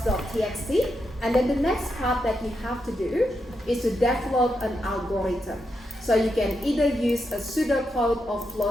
And then the next part that you have to do is to develop an algorithm. So you can either use a pseudocode or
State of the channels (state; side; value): normal; both; correlation 0.84